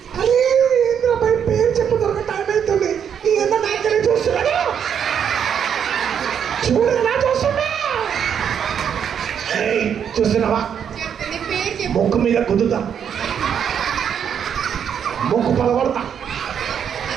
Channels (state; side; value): quieter; left; 8.1 dB